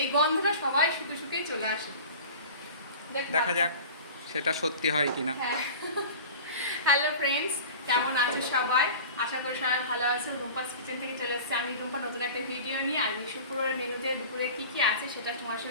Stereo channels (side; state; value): both; inverted; correlation -0.38